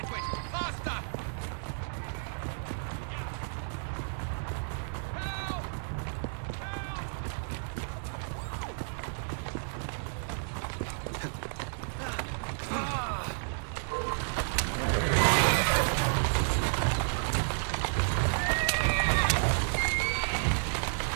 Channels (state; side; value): silent; left; digital silence